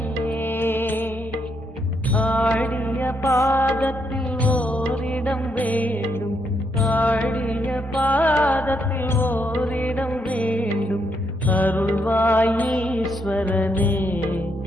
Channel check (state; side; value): normal; both; correlation 0.77